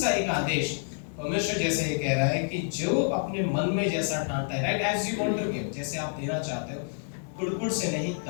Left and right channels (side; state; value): right; silent; digital silence